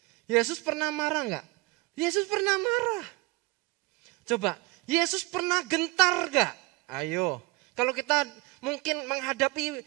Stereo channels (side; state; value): left; quieter; 21.6 dB